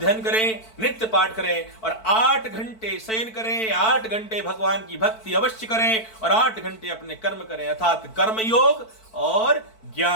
करें, नित्य पाठ करें और 8 घंटे शयन करें, 8 घंटे भगवान की भक्ति अवश्य करें और 8 घंटे अपने कर्म करें, अर्थात कर्म योग और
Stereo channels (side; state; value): right; late; 4.5 ms